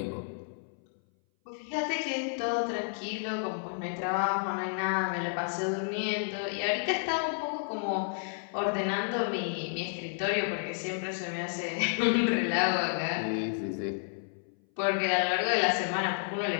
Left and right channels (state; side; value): silent; right; 57 dB below the other